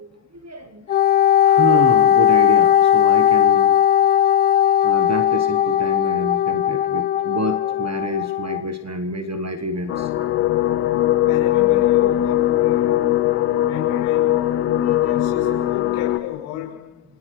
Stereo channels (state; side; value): quieter; right; 9.7 dB